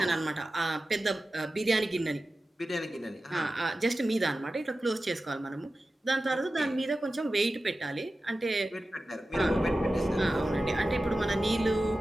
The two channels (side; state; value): both; normal; correlation 0.94